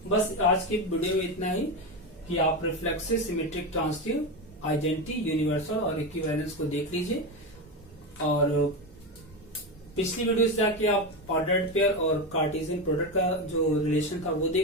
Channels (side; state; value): both; normal; correlation 0.16